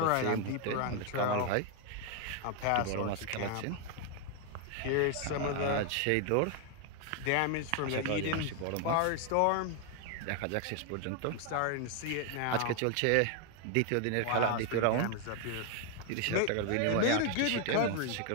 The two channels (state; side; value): different; both; correlation 0.01